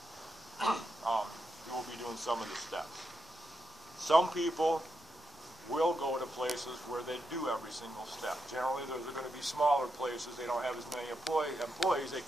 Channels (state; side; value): normal; both; correlation 0.85